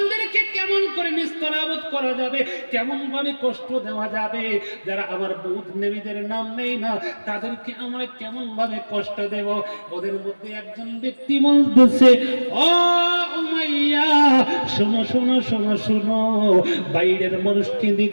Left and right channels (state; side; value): inverted; both; correlation -1.00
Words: কেমন করে নিস্তরাবত করা যাবে, কেমন ভাবে কষ্ট দেওয়া যাবে, যারা আমার বুধ নবীদের নাম নেই না তাদেরকে আমরা কেমন ভাবে কষ্ট দেব। ওদের মধ্যে একজন ব্যক্তি বলতেছে, ও উমাইয়া শোনো শোনো শোনো শোনো, বাইরের মানুষকে